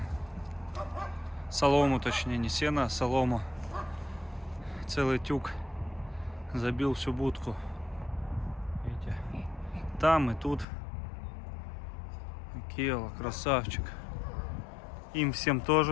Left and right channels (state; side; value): drops out; right; at 10.7 s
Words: солому, точнее, не сено, а солому. Целый тюк, забил всю будку. Видите? Там и тут. Келла, красавчик. Им всем